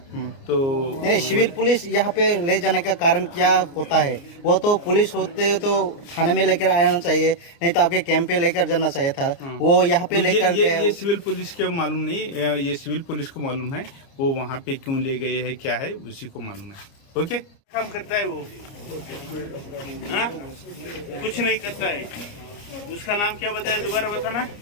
तो नहीं, सिविल पुलिस यहाँ पे ले जाने का कारण क्या होता है? वो तो पुलिस होते तो थाने में लेकर आना चाहिए, नहीं तो आपके कैंप पे लेकर जाना चाहिए था। वो यहाँ पे लेकर ये सिविल पुलिस के मालूम नहीं, ये सिविल पुलिस को मालूम है वो वहाँ पे क्यों ले गए है, क्या है उसी को मालूम है। ओके, काम करता है वो? हाँ, कुछ नहीं करता है। उसका नाम क्या बताया, दोबारा बताना?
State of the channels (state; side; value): late; right; 29 ms